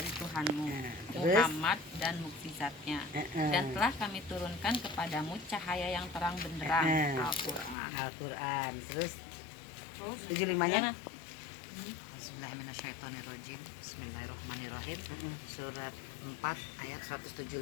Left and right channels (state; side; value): drops out; right; at 7.8 s